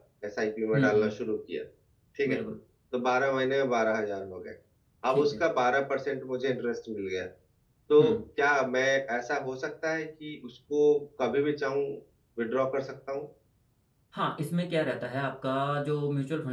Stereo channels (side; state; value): both; identical; correlation 1.00